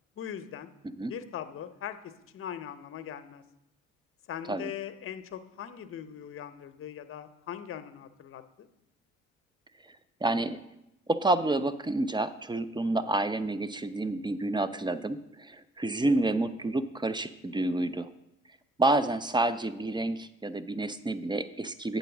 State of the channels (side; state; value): both; normal; correlation 0.61